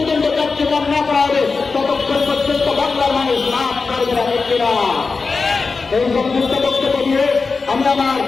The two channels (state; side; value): quieter; right; 4.4 dB